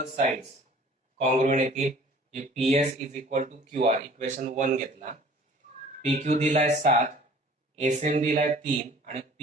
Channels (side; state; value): both; normal; correlation 0.50